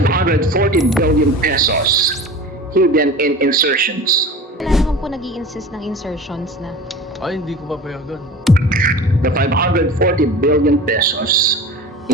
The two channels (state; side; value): normal; both; correlation 0.36